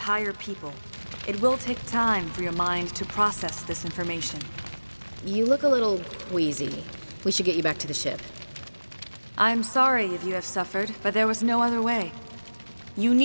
people. It will take time for your mind to process this information. You look a little queasy. We should get you back to the ship. I'm sorry if you have suffered, but there was no other way. You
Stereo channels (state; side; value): inverted; both; correlation -1.00